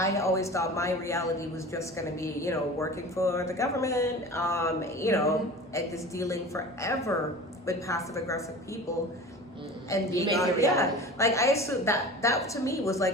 always thought my reality was just going to be, you know, working for the government, you know, and just dealing forever with passive aggressive people. And You being make it yeah, reality. like I assumed that to me was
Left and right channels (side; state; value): both; normal; correlation 0.37